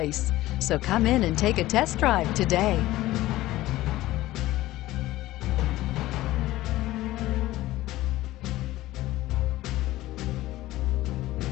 So come in and take a test drive today.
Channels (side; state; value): right; quieter; 16.5 dB